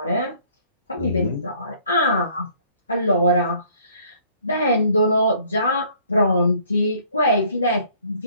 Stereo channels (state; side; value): inverted; both; correlation -0.59